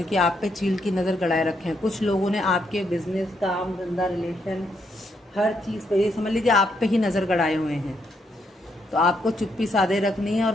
आप पे चील की नज़र गड़ाए रखे हैं। कुछ लोगों ने आपके बिजनेस, काम धंधा, रिलेशन, हर चीज़ पे, ये समझ लीजिए आप पे ही नज़र गड़ाए हुए हैं। तो आपको चुप्पी साधे रखनी है और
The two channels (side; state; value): both; normal; correlation 0.77